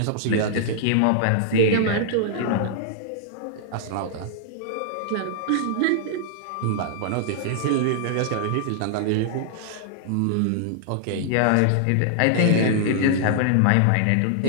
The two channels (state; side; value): different; both; correlation -0.01